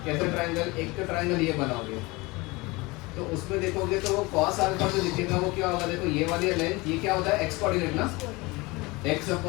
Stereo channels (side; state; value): right; quieter; 23.6 dB